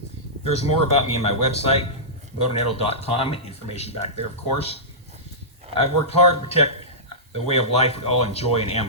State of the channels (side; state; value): both; normal; correlation -0.17